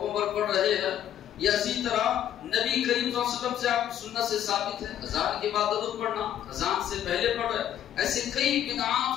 پر پڑھ رہے ہیں، یا اسی طرح نبی کریم صلی اللہ علیہ وسلم سے آپ سنت سے ثابت ہے اذان کے بعد درود پڑھنا، اذان سے پہلے پڑھ رہے۔ ایسے کئی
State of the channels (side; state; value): right; quieter; 10.8 dB